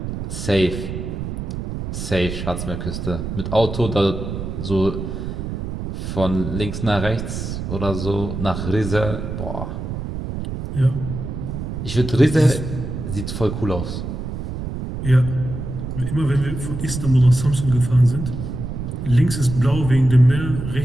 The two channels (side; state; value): right; noise; rumble, 5 dB below the sound